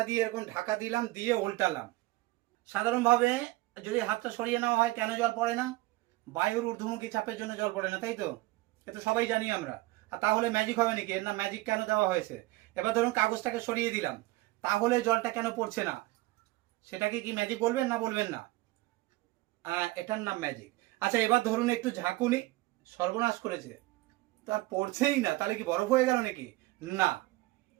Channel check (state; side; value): quieter; left; 19.8 dB